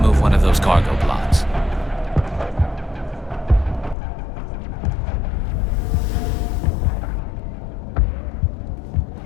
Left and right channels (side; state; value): right; drops out; at 4.0 s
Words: one of those cargo pods.